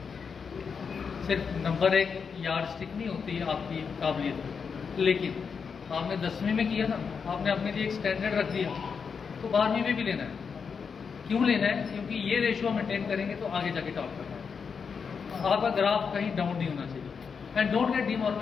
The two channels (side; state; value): right; quieter; 6.0 dB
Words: सिर्फ नंबर एक यार्ड स्टिक नहीं होती है आपकी काबिलियत, लेकिन आपने 10वीं में किया ना, आपने अपने लिए एक स्टैंडर्ड रख दिया, तो 12वीं में भी लेना है। क्यों लेना है? क्योंकि ये रेशियो मेंटेन करेंगे तो आगे जाके टॉप करना है। आपका ग्राफ कहीं डाउन नहीं होना चाहिए, एंड डोंट गेट